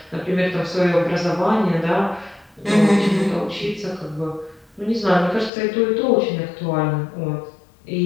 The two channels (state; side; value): drops out; right; at 5.5 s